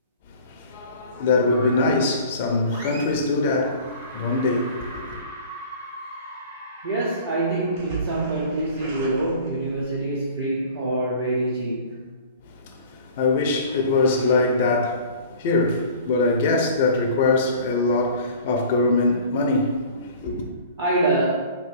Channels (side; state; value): both; inverted; correlation -0.45